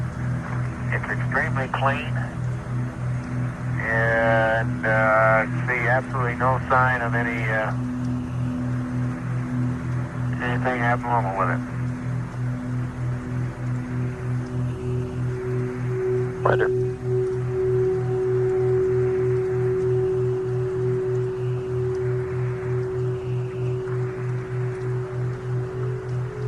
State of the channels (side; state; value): both; identical; correlation 1.00